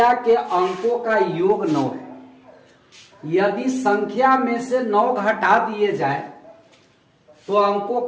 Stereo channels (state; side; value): identical; both; correlation 1.00